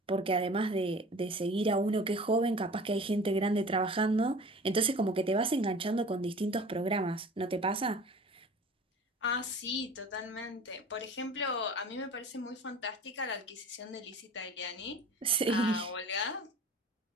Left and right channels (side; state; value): both; normal; correlation 0.42